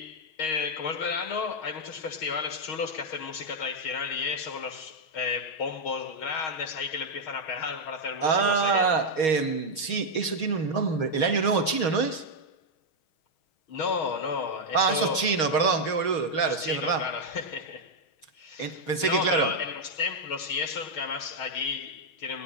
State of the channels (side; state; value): right; late; 6.4 ms